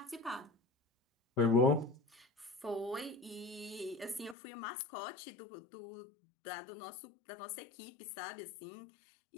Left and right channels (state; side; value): drops out; right; at 4.4 s